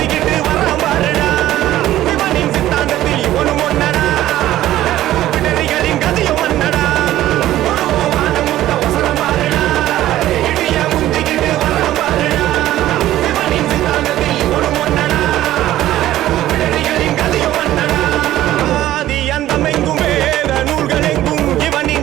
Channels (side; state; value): left; quieter; 14.1 dB